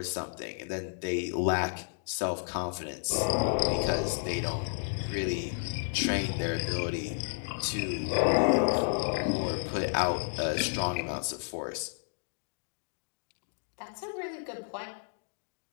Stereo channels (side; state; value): right; silent; digital silence